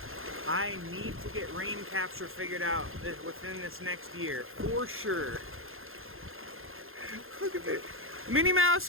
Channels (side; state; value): left; late; 0.60 ms